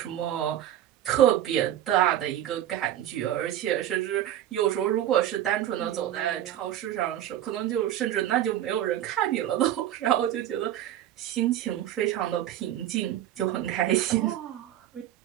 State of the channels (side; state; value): left; quieter; 12.0 dB